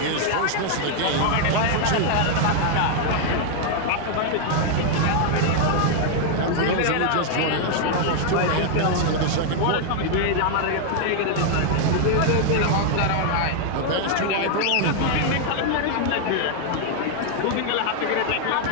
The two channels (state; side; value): different; both; correlation 0.00